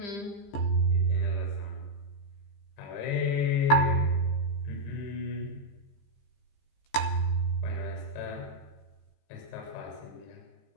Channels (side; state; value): right; late; 15 ms